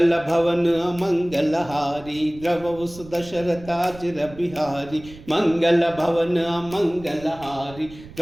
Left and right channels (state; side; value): noise; right; rumble, 18 dB below the sound